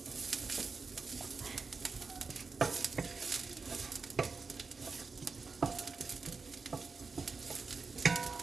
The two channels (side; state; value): left; quieter; 4.6 dB